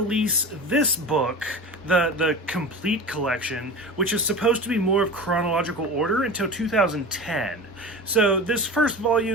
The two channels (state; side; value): normal; both; correlation 0.32